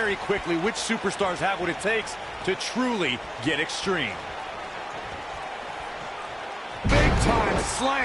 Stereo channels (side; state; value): both; identical; correlation 1.00